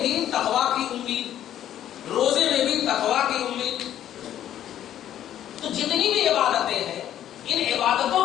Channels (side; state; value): right; quieter; 11.2 dB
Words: بھی تقویٰ کی امید، روزے میں بھی تقویٰ کی امید. تو جتنی بھی عبادتیں ہیں، ان